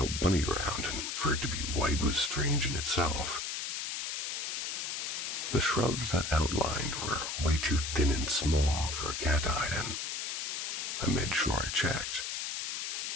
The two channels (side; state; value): left; noise; hiss, 3 dB below the sound